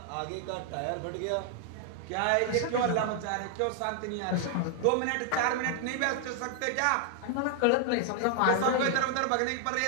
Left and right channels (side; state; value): both; different; correlation 0.00